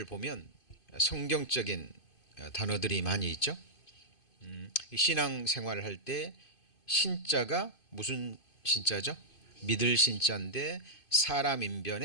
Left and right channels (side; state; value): right; late; 2.5 ms